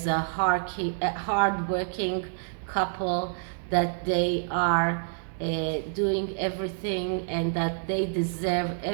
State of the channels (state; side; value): silent; left; digital silence